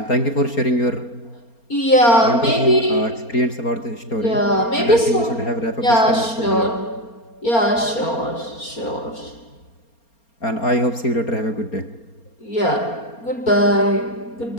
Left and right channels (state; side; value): late; right; 4.3 ms